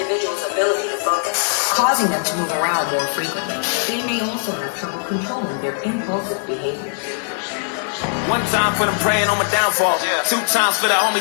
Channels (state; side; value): silent; right; 66 dB below the other